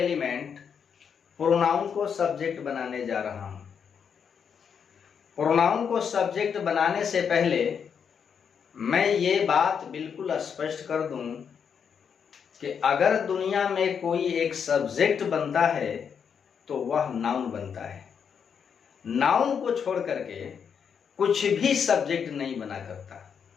प्रोनाउन को सब्जेक्ट बनाने जा रहा हूं। प्रोनाउन को सब्जेक्ट बनाने से पहले मैं ये बात बिल्कुल स्पष्ट कर दूं कि अगर दुनिया में कोई एक सब्जेक्ट बनता है तो वह नाउन बनता है। नाउन को छोड़ करके कुछ भी सब्जेक्ट नहीं बना करता।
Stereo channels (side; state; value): right; quieter; 7.1 dB